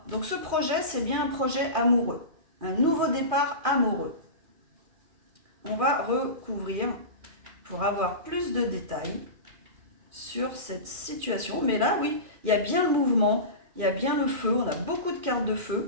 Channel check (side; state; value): left; late; 2.4 ms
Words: Donc ce projet, c'est bien un projet amoureux. Un nouveau départ amoureux. On va recouvrir pour avoir plus de détails sur cette situation. Mais là, oui, il y a bien le mouvement, il y a bien le feu. On a beaucoup de cartes de